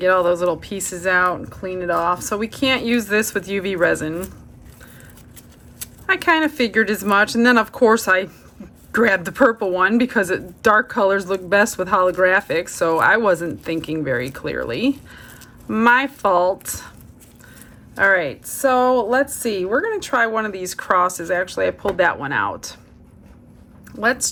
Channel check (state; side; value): identical; both; correlation 1.00